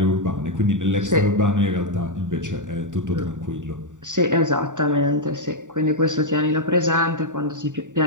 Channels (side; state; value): left; late; 0.86 ms